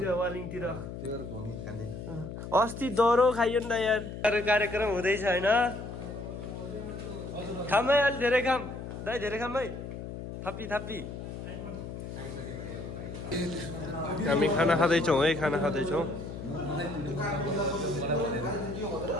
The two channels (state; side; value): noise; left; hum, 8 dB below the sound